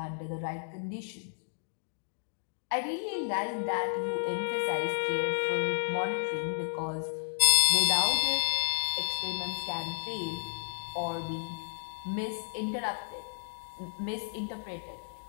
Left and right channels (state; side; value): silent; right; digital silence